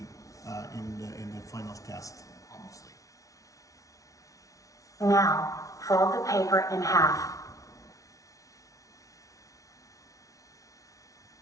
in the final test, obviously. Now, fold the paper in half.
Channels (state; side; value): late; right; 0.17 ms